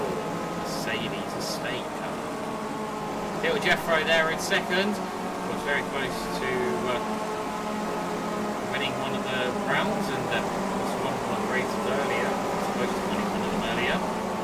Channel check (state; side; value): identical; both; correlation 1.00